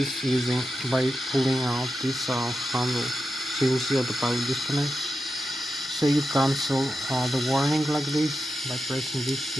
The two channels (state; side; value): normal; both; correlation 0.90